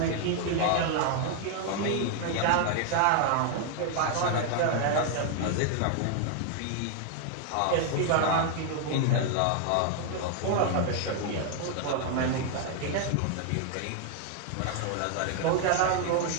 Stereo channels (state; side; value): different; both; correlation 0.00